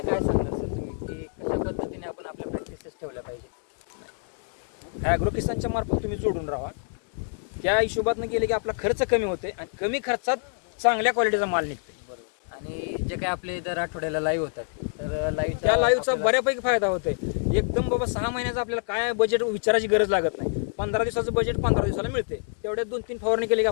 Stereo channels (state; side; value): silent; right; digital silence